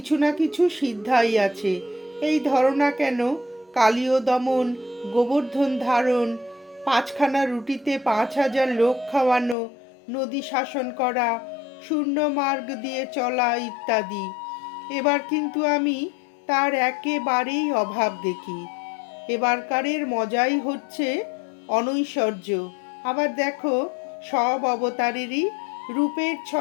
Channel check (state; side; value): drops out; right; at 9.6 s